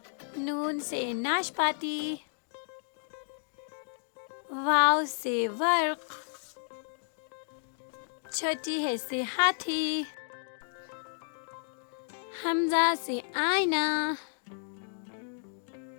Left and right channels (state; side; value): silent; right; digital silence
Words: नून से नाशपाती, वाव से वर्क, छोटी है से हाथी, हमजा से आईना,